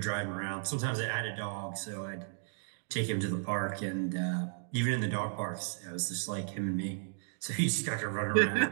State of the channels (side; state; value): left; silent; digital silence